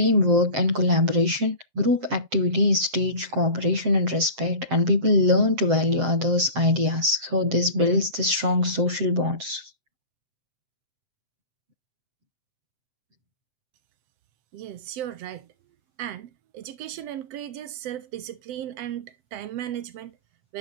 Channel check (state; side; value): late; left; 7.7 ms